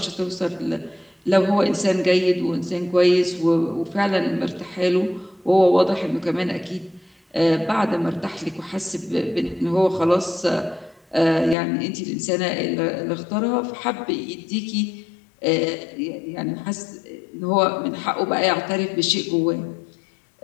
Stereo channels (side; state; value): right; drops out; at 11.6 s